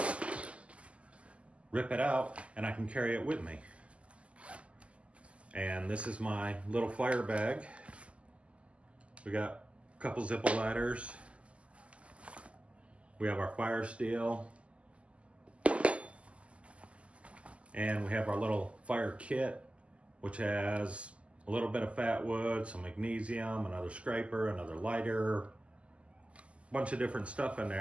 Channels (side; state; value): left; late; 0.059 ms